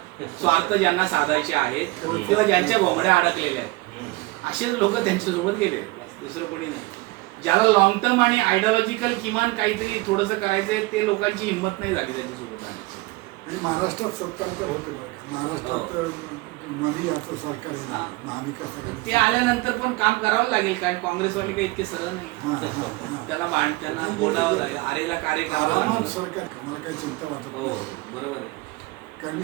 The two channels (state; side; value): quieter; left; 22.2 dB